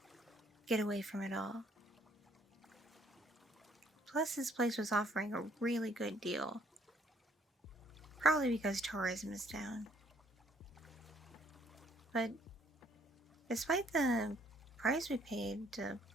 get away from it all. Plus, this place was offering a really good deal. Probably because tourism is down. But despite the price we paid to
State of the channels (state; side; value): normal; both; correlation 0.64